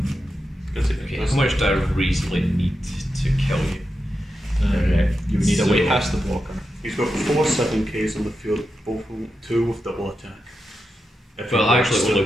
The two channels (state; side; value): normal; both; correlation 0.88